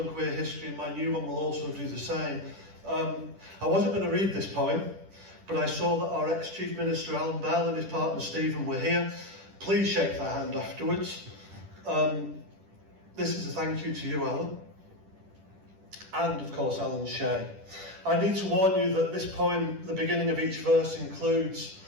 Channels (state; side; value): late; left; 10 ms